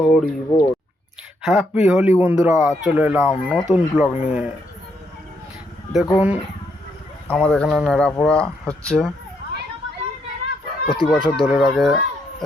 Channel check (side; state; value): both; normal; correlation 0.76